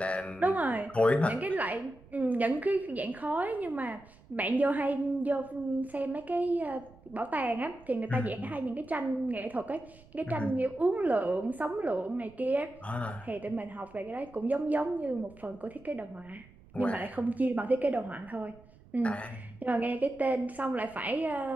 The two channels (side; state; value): right; noise; rumble, 24 dB below the sound